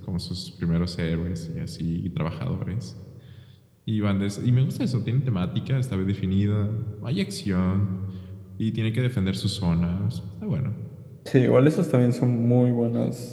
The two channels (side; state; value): both; identical; correlation 1.00